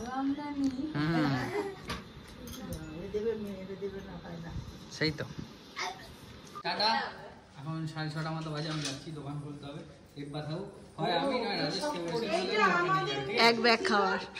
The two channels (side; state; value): both; identical; correlation 1.00